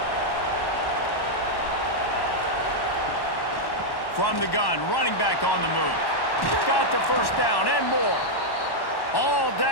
From the gun, running back on the move. Got the first down and more. All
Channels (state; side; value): late; right; 1.1 ms